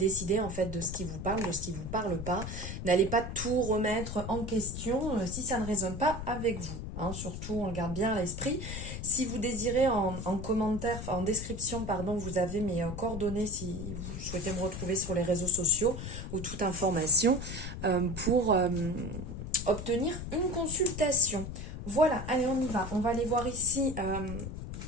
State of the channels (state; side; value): noise; left; rumble, 7 dB below the sound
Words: en fait de ce qui vous parle, de ce qui ne vous parle pas. N'allez pas tout remettre en question si ça ne résonne pas avec vous. Hein. Surtout, on le garde bien à l'esprit. Si vous désirez en commentaire, en description, pardon, vous avez mes coordonnées si vous souhaitez me retrouver sur les réseaux sociaux ou toute information pour obtenir une consultation. Voilà, allez, on y va. On va aller voir ici